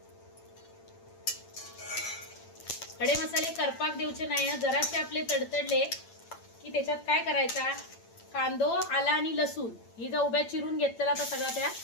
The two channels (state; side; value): late; right; 8.8 ms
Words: खडे मसाले करपाक देऊचे नाही, जरासे आपले तडतडले की त्याच्यात काय करायचा, कांदो, आला आणि लसूण ही जो उभ्या चिरून घेतलेला तर सगळा त्या